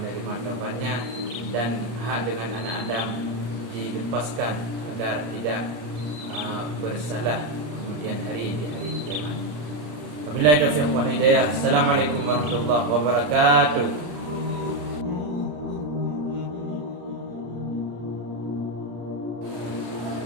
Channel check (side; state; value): left; late; 34 ms